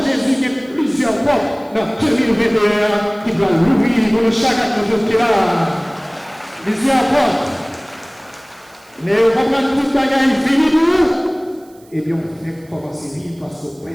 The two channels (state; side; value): noise; right; hiss, 29 dB below the sound